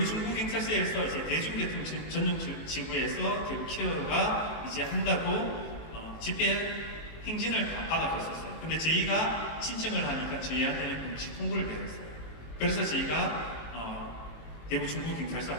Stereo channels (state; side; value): late; right; 18 ms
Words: 중부경찰서에서 이제 대중교통 전용 지구에서 대구 키어가 이제 한다고 집회 행진을 다 받아갔었어요. 근데 저희가 신청을 하니까 저희한테는 공식 통보를 받았어요. 그래서 저희가 대구 중부경찰서